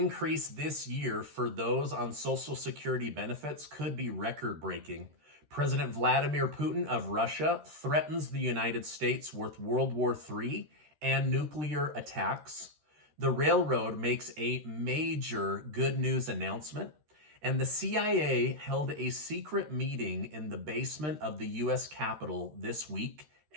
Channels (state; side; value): late; left; 13 ms